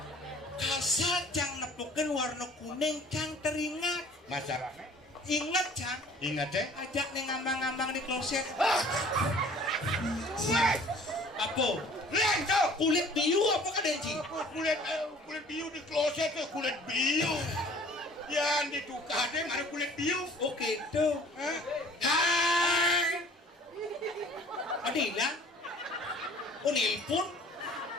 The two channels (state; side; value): normal; both; correlation 0.51